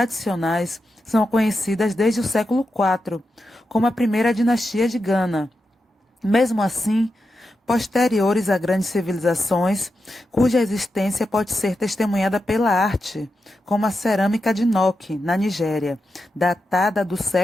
são conhecidas desde o século IV, como a primeira dinastia de Gana. Mesmo assim, posteriores a grandes civilizações, cuja existência pode ser testemunhada pela arte, como a cerâmica de Nok, na Nigéria, datada do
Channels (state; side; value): normal; both; correlation 0.88